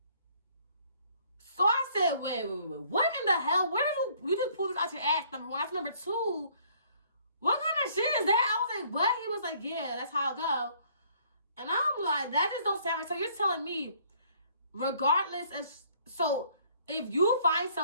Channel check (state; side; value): inverted; both; correlation -0.61